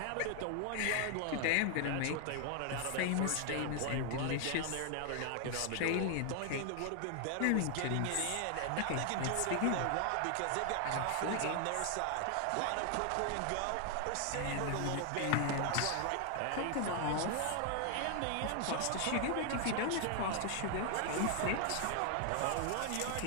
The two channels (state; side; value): different; both; correlation 0.00